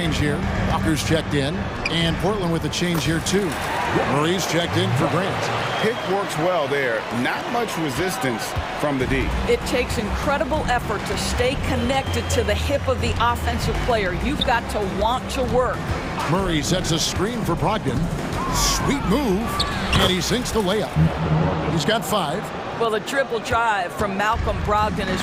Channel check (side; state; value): both; identical; correlation 1.00